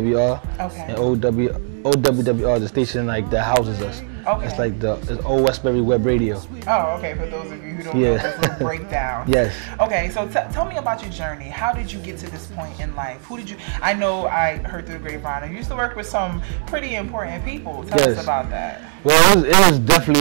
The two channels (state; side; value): silent; left; 63 dB below the other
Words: Okay. And OWWR is the station like that houses us. Okay. It's like it's Old Westbury Web Radio. Oh, okay. For those of you who don't know this little breakdown. Yes. Okay, so tell me about your journey. How did you get to this point in life? Who did you? I know I heard through the grapevine. You used to work with some pretty important people. Tell us about that. Well, it was